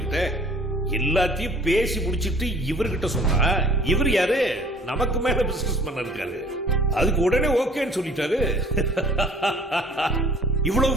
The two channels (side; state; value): both; normal; correlation 0.52